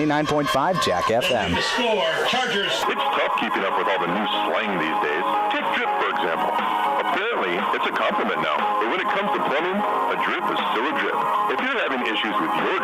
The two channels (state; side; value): identical; both; correlation 1.00